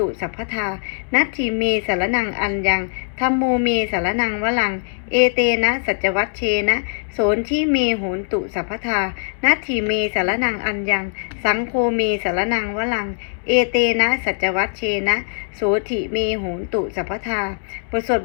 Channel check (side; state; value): right; silent; 65 dB below the other